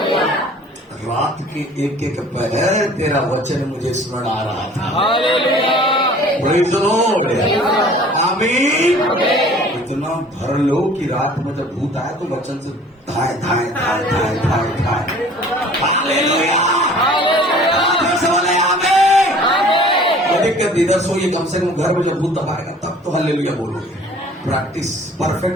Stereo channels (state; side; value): normal; both; correlation 0.49